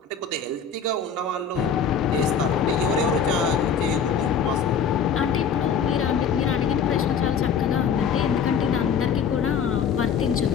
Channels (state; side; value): quieter; right; 6.6 dB